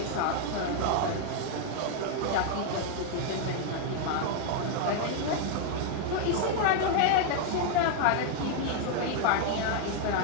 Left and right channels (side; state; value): both; different; correlation 0.00